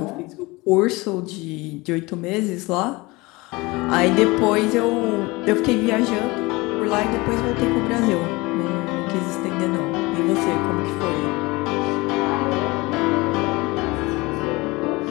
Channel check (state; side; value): quieter; right; 23.1 dB